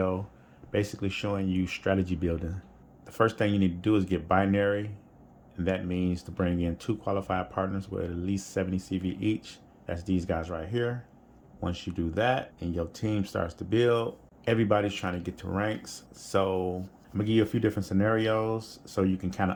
basically showing you strategy building. The first thing you need to do is get binary, and that means to bring in 2 qualified partners with at least 70 CV each. That's these guys right here. Once you do that and your team starts to build, everybody's trying to get to ranks. So I'm gonna give you a few different scenarios so you can kind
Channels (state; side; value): identical; both; correlation 1.00